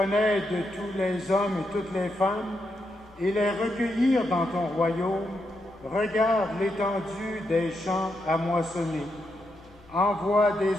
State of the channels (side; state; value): both; normal; correlation 0.83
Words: de tous les hommes et toutes les femmes et les recueillir dans ton royaume, regarde l'étendue des champs à moissonner. Envoie des